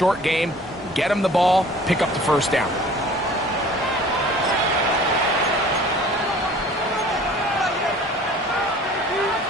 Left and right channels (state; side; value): normal; both; correlation 0.48